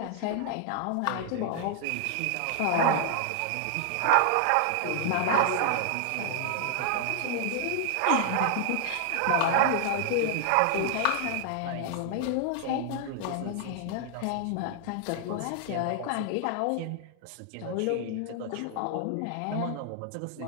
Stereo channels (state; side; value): different; both; correlation 0.00